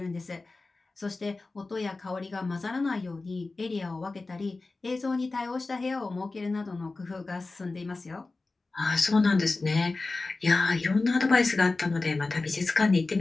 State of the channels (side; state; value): right; quieter; 3.5 dB